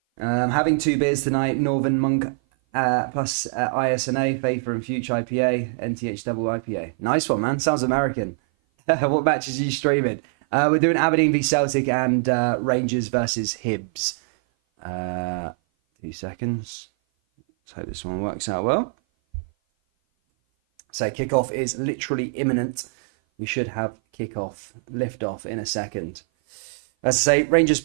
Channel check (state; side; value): silent; left; 57 dB below the other